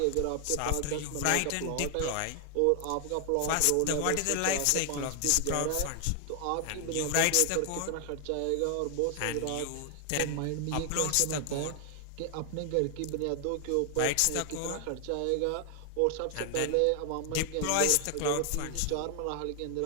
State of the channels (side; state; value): both; different; correlation 0.00